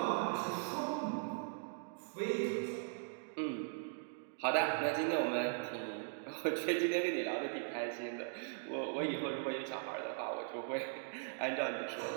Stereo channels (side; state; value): left; silent; digital silence